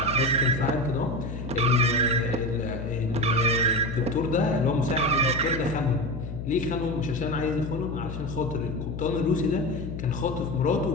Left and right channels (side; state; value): left; noise; hum, 7 dB below the sound